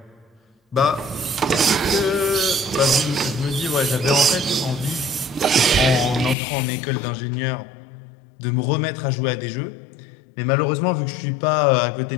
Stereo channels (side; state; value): right; drops out; at 6.4 s